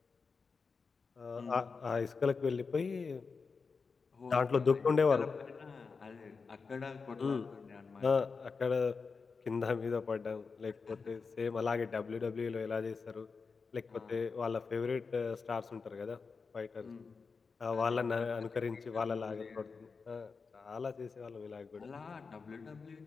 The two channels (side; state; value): right; quieter; 4.9 dB